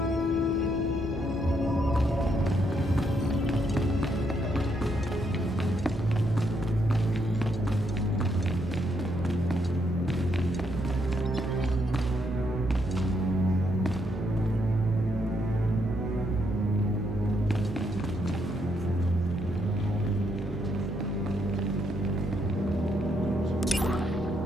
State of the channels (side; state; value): both; normal; correlation 0.76